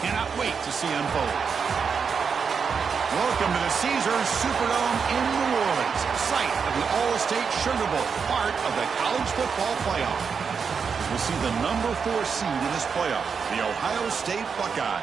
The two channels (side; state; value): left; quieter; 6.0 dB